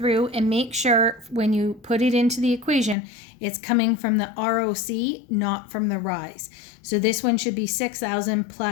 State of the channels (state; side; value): drops out; right; at 3.0 s